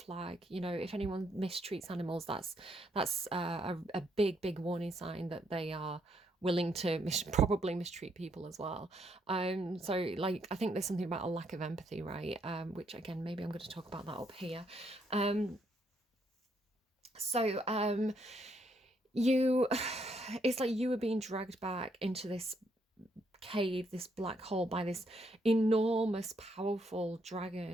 flag. You know, if anyone mistreats animals, that's a big warning sign that they are willing to probably mistreat people as well. So like, I think there's something about a lack of empathy, right? Which again, maybe I'm going to talk about that up here. So you it's like you were being dragged back into this cave, this black hole, by this enormous powerful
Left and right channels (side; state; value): both; normal; correlation 0.74